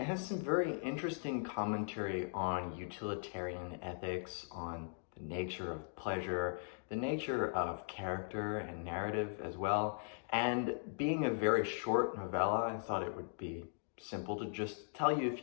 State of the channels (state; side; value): silent; right; digital silence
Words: has some very interesting commentary on utilitarian ethics, on the nature of pleasure, the nature of character and narrative as well. And being a very short novella, I thought it would be simple to just tell you a